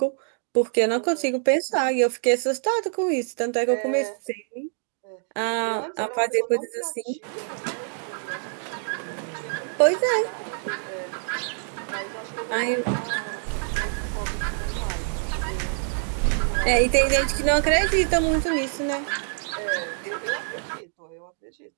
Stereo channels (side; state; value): left; silent; digital silence